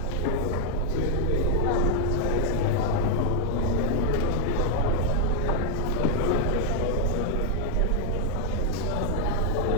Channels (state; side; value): different; both; correlation 0.00